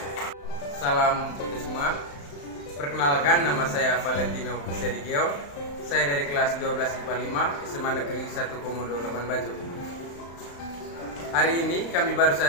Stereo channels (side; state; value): right; late; 35 ms